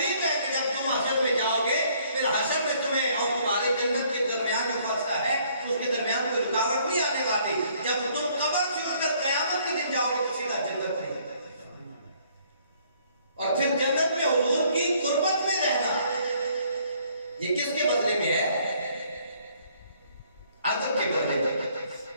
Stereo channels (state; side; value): inverted; both; correlation -0.63